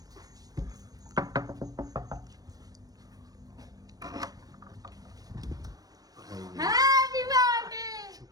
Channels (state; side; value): late; left; 0.18 ms